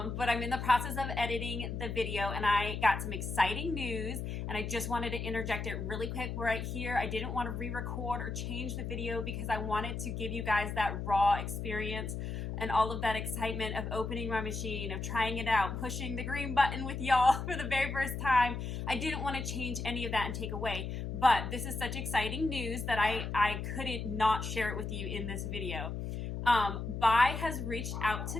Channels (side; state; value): left; noise; hum, 4 dB below the sound